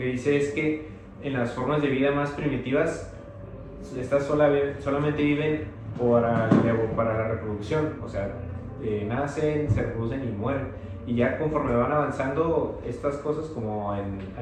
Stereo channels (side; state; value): both; identical; correlation 1.00